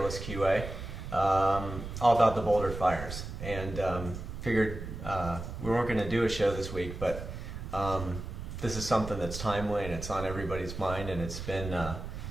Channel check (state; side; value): noise; right; rumble, 8 dB below the sound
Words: QA, all about the Boulder Fires, and figured we weren't going to do a show this week, but this is something that's timely and it's on everybody's mind, and it's been,